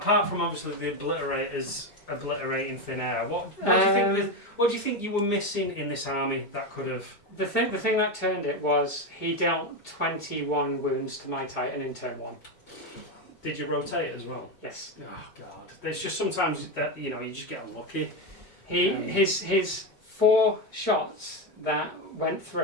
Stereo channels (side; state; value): right; late; 4.9 ms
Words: from obviously the obliterators obliterating thin air, what do you think you were missing in this army that could have... The thing that turned it was he dealt 21 wounds to my Titan in turn 1. Did you rotate as well? Yes. Oh God! There's just sometimes that you just get unlucky. His 4 shots that went